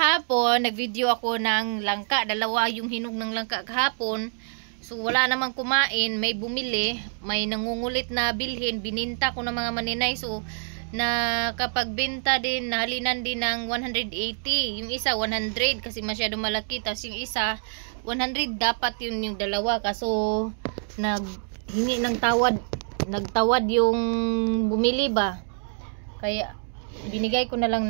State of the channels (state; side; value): silent; left; digital silence